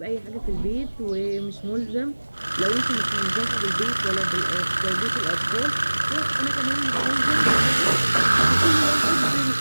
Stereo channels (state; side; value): inverted; both; correlation -1.00